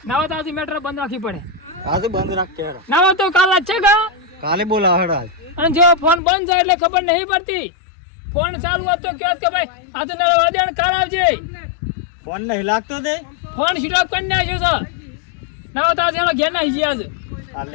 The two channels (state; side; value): drops out; right; at 6.2 s